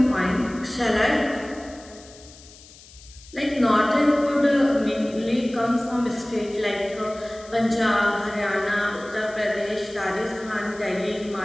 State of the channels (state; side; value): noise; left; hiss, 21 dB below the sound